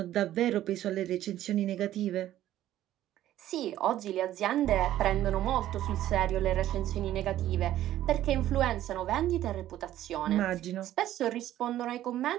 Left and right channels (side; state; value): left; quieter; 13.1 dB